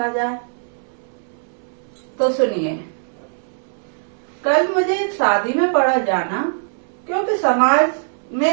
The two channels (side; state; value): left; silent; digital silence